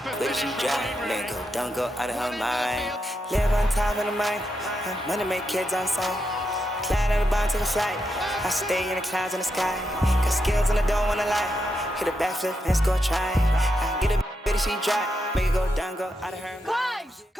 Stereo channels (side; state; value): both; normal; correlation 0.84